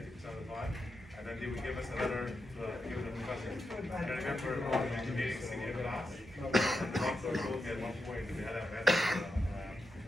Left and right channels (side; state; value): both; normal; correlation 0.87